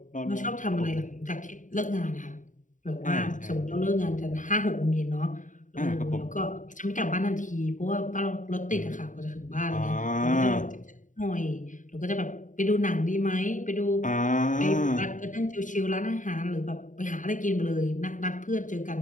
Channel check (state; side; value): late; right; 0.37 ms